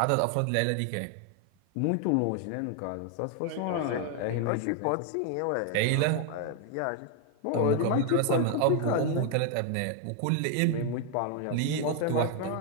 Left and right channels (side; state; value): both; different; correlation 0.00